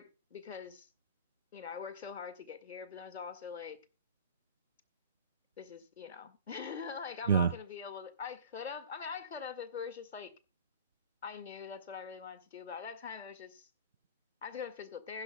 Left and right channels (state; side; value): inverted; both; correlation -0.40